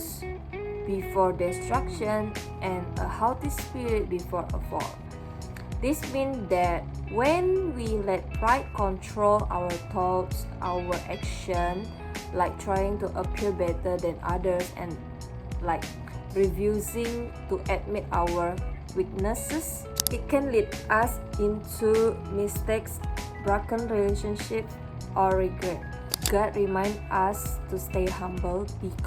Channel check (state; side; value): identical; both; correlation 1.00